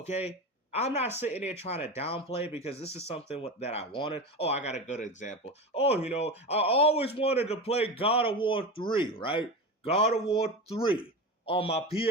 I'm not sitting there trying to downplay because this is something that I wanted. Oh, I got a good example. Oh, I always wanted to play God of War 3, right? God of War 3 on my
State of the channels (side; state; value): both; normal; correlation 0.25